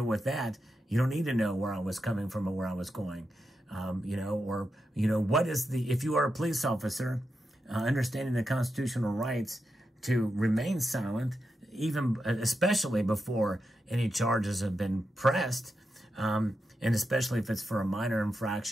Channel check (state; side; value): normal; both; correlation 0.87